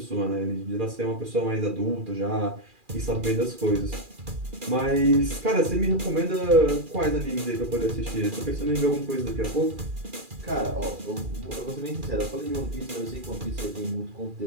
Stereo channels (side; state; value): left; late; 2.4 ms